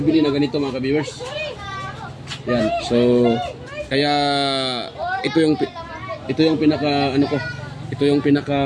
na ganito mga ka-viewers. Yan. So kaya ito yung pinaka ito yung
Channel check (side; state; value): both; identical; correlation 1.00